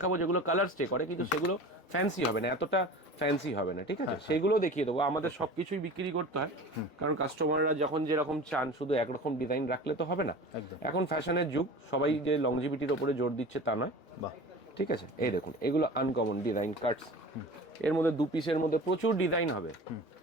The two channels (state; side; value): normal; both; correlation 0.37